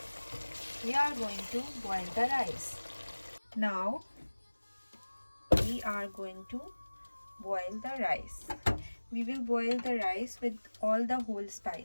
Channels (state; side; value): inverted; both; correlation -1.00